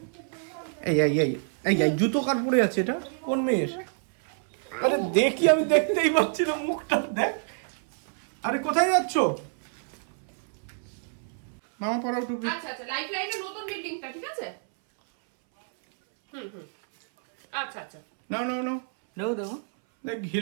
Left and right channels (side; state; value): left; silent; 60 dB below the other